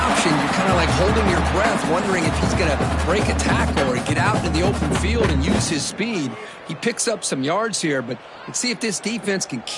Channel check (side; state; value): both; identical; correlation 1.00